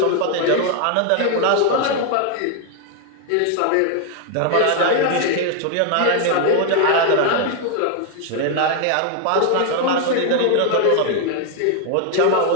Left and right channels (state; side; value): different; both; correlation 0.00